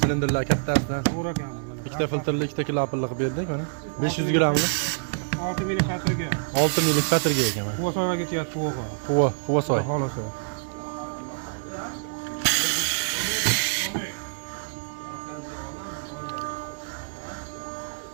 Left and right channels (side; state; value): left; silent; digital silence